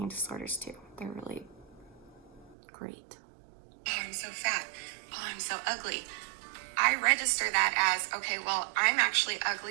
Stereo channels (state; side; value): drops out; left; at 2.6 s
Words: disorders do. They're really great. Oh, I'm so fat. Oh, I'm so ugly. I register that as, okay, well, I'm actually